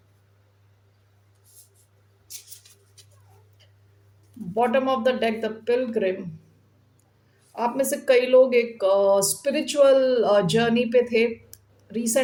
bottom of the deck, the pilgrim. आप में से कई लोग एक स्पिरिचुअल जर्नी पे थे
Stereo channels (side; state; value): both; identical; correlation 1.00